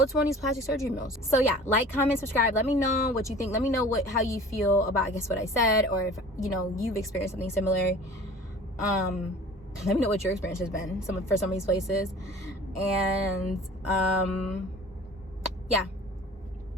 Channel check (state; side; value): normal; both; correlation 0.44